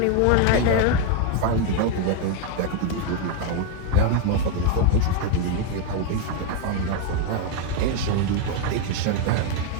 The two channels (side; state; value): both; different; correlation 0.01